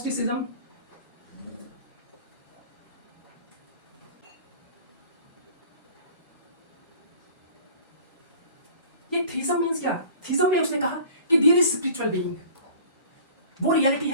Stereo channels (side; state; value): both; inverted; correlation -0.46